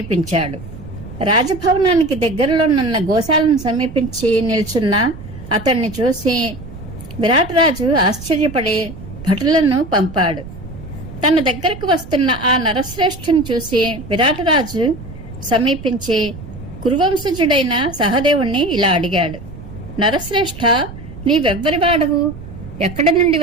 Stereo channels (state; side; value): noise; right; rumble, 14 dB below the sound